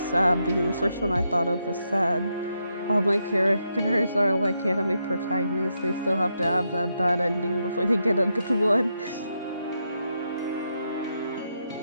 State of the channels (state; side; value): inverted; both; correlation -0.82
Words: because the first one I thought of was sad. All my characters are like anime protagonists. They still have to have that bad ending before they get a good one.